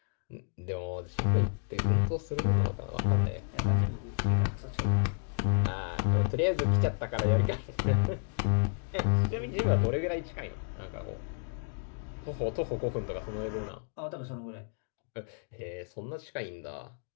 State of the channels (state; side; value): silent; right; digital silence